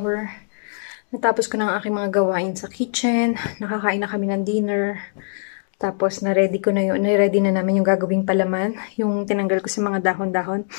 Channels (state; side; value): silent; right; digital silence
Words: Natapos ko na ang aking mga gawain sa kitchen. Nakakain na kami ng dinner. Tapos, na-ready ko na yun. Na-ready na namin yung gagawing palaman. Yung tinanggal ko sa mga dahon-dahon.